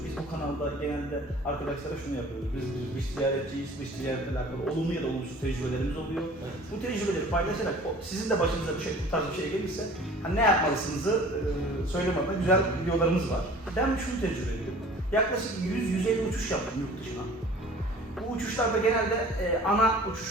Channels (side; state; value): both; normal; correlation 0.47